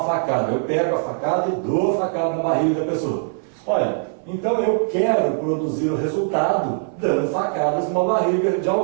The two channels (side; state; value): left; silent; 57 dB below the other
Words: facada. Eu pego a facada e dou a facada na barriga da pessoa. Olha, então eu quero produzir o resultado dando facadas numa barriga de